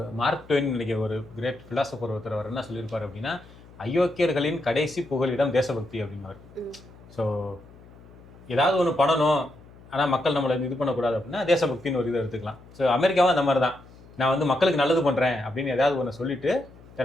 மார்க் ட்வெயின் இன்னைக்கு ஒரு கிரேட் பிலாசபர் ஒருத்தர் அவர் என்ன சொல்லியிருப்பாரு அப்படின்னா, அயோக்கியர்களின் கடைசி புகலிடம் தேசபக்தி அப்படின்னாரு. ஸோ ஏதாவது ஒன்று பண்ணணும், ஆனால் மக்கள் நம்மளை இது பண்ணக்கூடாது அப்படின்னா தேசபக்தின்னு ஒரு இதை எடுத்துக்கலாம். ஸோ அமெரிக்காவும் அந்த மாதிரி தான், நான் வந்து மக்களுக்கு நல்லது பண்ணுறேன் அப்படின்னு ஏதாவது ஒன்று சொல்லிட்டு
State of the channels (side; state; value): left; noise; hum, 22 dB below the sound